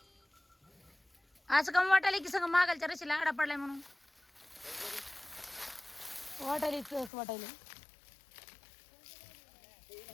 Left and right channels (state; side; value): drops out; right; at 7.1 s